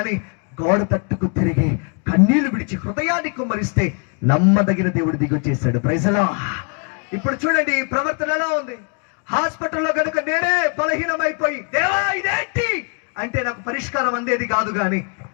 గోడ తట్టుకు తిరిగి కన్నీళ్లు విడిచి హృదయాన్ని కుమ్మరిస్తే నమ్మదగిన దేవుడు దిగొచ్చేశాడు. ప్రైజలా. ఇప్పుడు చూడండి ఈ ప్రవర్తన ఎలా ఉంది. హాస్పిటల్లో కనుక నేనే బలహీనమైపోయి దేవా ఇదేంటి అంటే నాకు పరిష్కారం అందేది కాదు గాని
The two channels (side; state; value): right; quieter; 38.7 dB